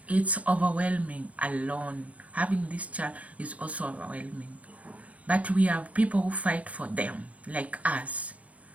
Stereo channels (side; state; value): left; late; 0.067 ms